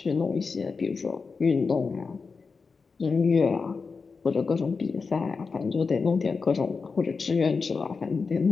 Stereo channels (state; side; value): quieter; right; 4.8 dB